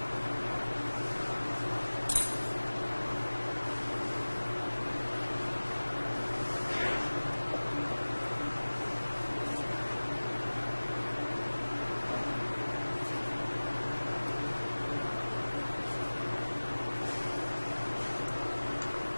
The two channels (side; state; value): both; inverted; correlation -1.00